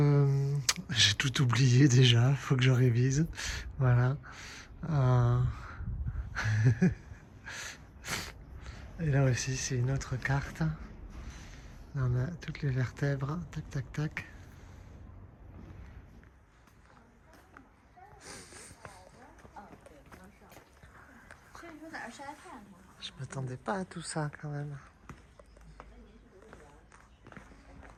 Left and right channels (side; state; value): both; identical; correlation 1.00